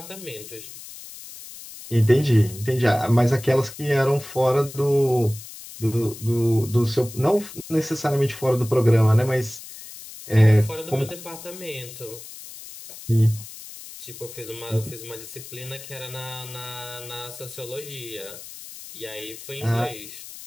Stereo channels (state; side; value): noise; left; hiss, 14 dB below the sound